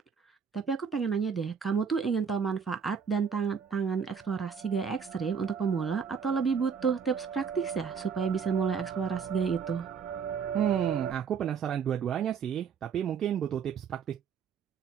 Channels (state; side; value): quieter; left; 6.5 dB